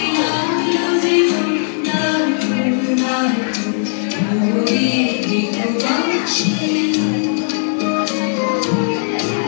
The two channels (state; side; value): silent; right; digital silence